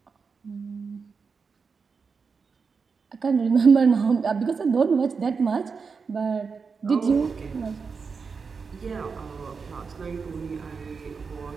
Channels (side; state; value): left; quieter; 5.2 dB